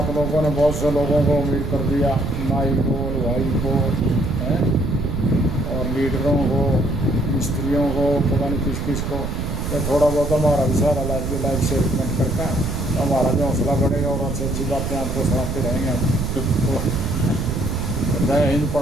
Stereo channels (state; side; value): noise; right; rumble, 3 dB below the sound